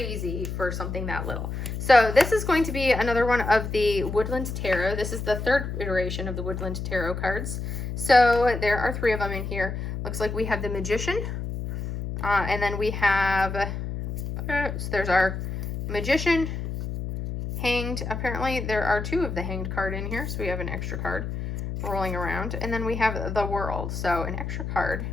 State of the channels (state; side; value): noise; left; hum, 5 dB below the sound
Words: for something that little. So this is going to be another one of the Woodland Tarot. This is the 3rd iteration of the Woodland Tarot cards. So there are 3 of them in here. Looks like we have the Magician, and then we have, so there's our Magician, Hanged. Apparently there are 2 of the Hanged card in here, so we have an extra card rolling around. And then we have the World, so an extra card.